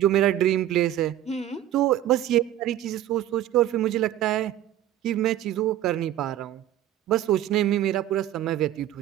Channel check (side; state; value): left; quieter; 12.5 dB